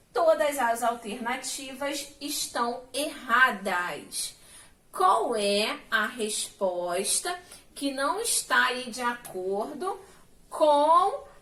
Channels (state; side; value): identical; both; correlation 1.00